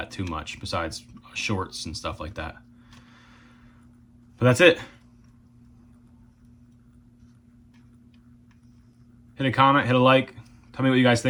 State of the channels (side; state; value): both; identical; correlation 1.00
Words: too much, besides shorts and stuff like that. But that's it. Hit a comment, hit a like. Tell me what you guys